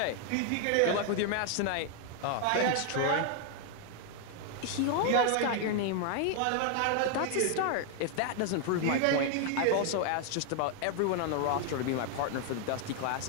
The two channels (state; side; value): different; both; correlation 0.00